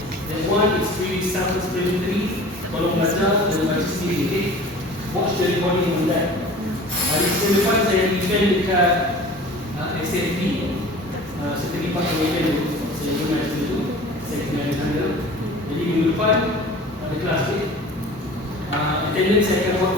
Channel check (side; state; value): both; normal; correlation 0.42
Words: And one is pretty self-explanatory. Kalau belajar dan baca sendiri, okay? Watch the recording on that. Hari Isnin depan saya event dekat SFB. Saya terlibat dengan event itu. Saya pernah itu. Saya kena handle. Jadi minggu depan ada kelas, okay? Attendance saya akan